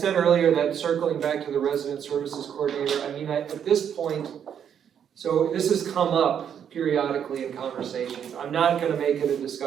earlier that circling back to the resident services coordinator, I mean, at this point, so this has come up periodically in conversations. I'm not gonna make it a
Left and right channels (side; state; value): left; quieter; 8.5 dB